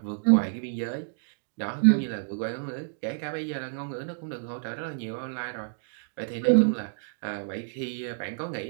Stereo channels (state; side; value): silent; left; digital silence